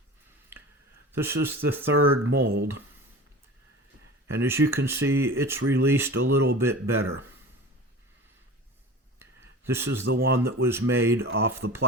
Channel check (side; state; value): both; normal; correlation 0.36